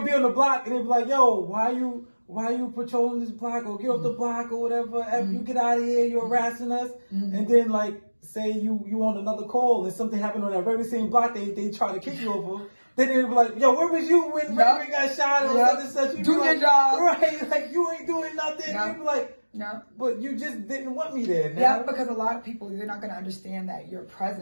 be on the block and they'll be like, "Yo, why you patrolling this block, or get off the block or whatever? You get out of here, you're harassing us." And then say you on another call and something happened on that very same block they try to kick you over. Then they'll be like, "Yo, where was you when Ray got shot or such and such?" You do your job, right? Like you ain't doing nothing. You be like. No. But you just didn't want me there. Now. Yeah, because a lot of people, you're not going to understand that your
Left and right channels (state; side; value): inverted; both; correlation -1.00